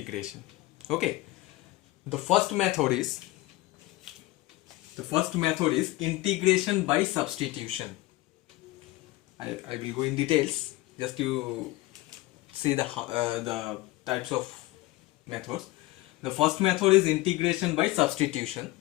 Okay, the first method is integration by substitution. I will go in details just to see the types of methods. The first method is integration by substitution.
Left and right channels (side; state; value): right; quieter; 19.2 dB